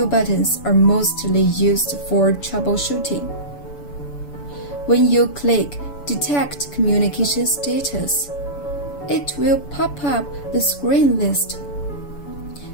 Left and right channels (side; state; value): right; late; 7.0 ms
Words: buttons are mostly used for troubleshooting. When you click Detect Communication Status, it will pop up the screen list.